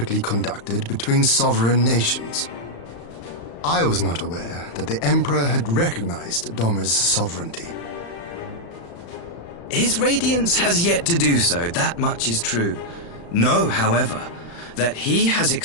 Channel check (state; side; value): late; right; 35 ms